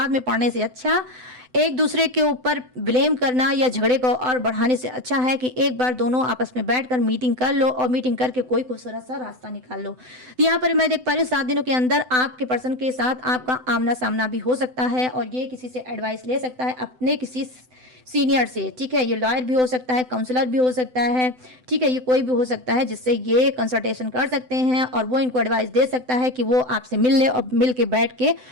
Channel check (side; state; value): left; late; 7.9 ms